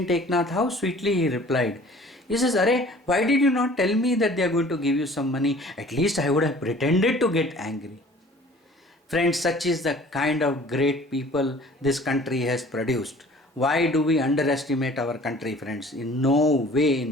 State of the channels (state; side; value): normal; both; correlation 0.49